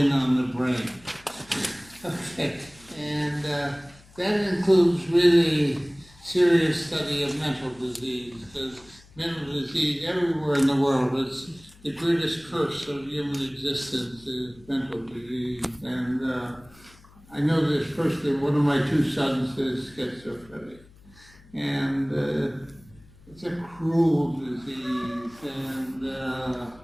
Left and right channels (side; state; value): left; noise; hum, 25 dB below the sound